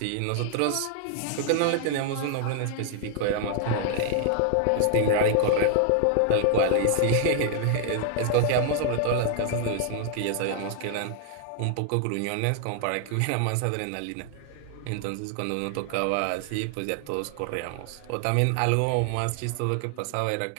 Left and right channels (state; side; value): different; both; correlation 0.00